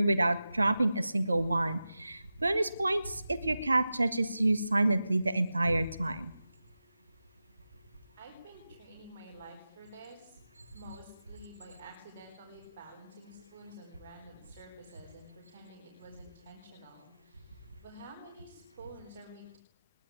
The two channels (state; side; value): inverted; both; correlation -0.93